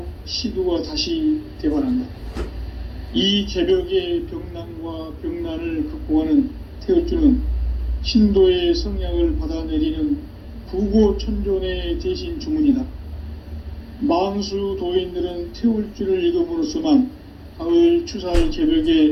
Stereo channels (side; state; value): both; identical; correlation 1.00